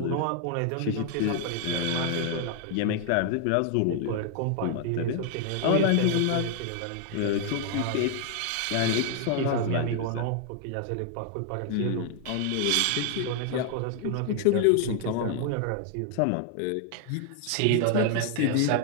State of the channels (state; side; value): different; both; correlation 0.00